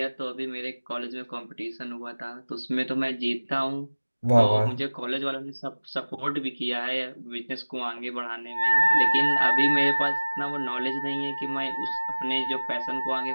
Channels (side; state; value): both; inverted; correlation -1.00